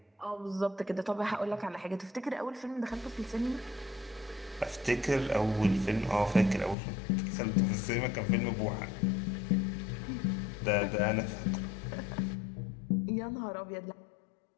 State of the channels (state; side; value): drops out; right; at 6.8 s